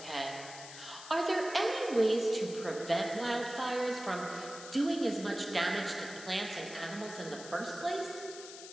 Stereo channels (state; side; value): noise; left; hiss, 13 dB below the sound